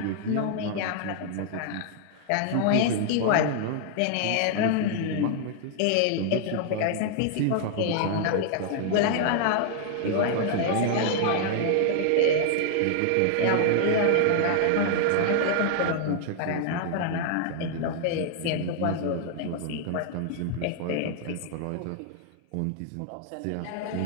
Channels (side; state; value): both; different; correlation 0.00